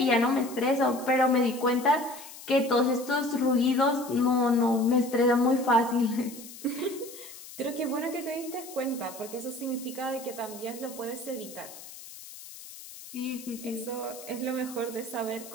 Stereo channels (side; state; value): left; noise; hiss, 15 dB below the sound